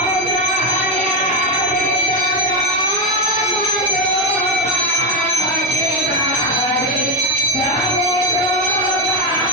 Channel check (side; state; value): both; normal; correlation 0.10